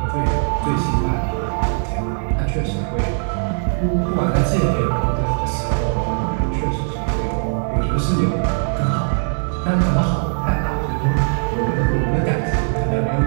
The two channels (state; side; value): silent; left; 61 dB below the other